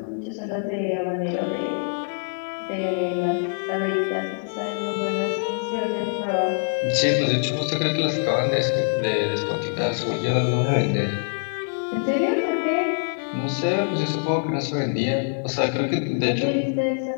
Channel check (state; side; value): silent; right; digital silence